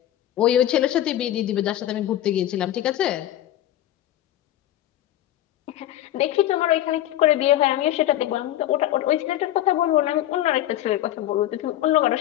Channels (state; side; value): quieter; right; 13.2 dB